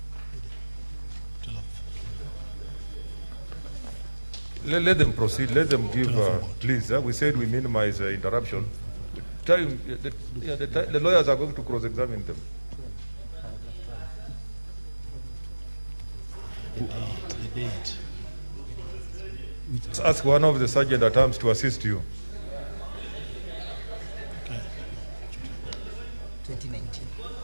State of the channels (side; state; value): both; inverted; correlation -1.00